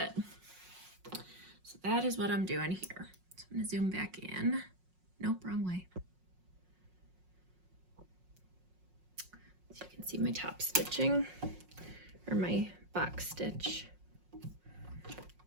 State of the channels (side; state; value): left; late; 5.5 ms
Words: So that is what I'm doing here. So I'm going to zoom back in. Nope, wrong way. So you can see my top stitching, or my box stitch.